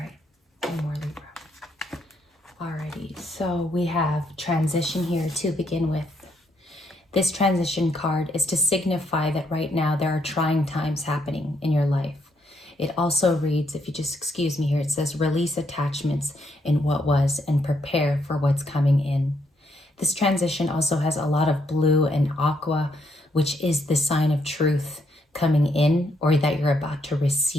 one more Libra. Alrighty, so we have transition here to begin with. This transition card is to signify that right now there are trying times happening in your life. It also reads, if you just excuse me here, it says release attachments in what was and prepare for what's coming in. This transition also has a lot of blue and aqua, which is the sign of truth coming in, or that you're about to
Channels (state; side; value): normal; both; correlation 0.74